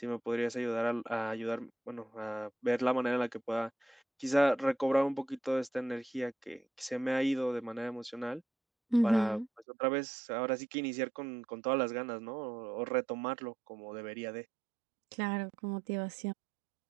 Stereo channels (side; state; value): left; drops out; at 9.7 s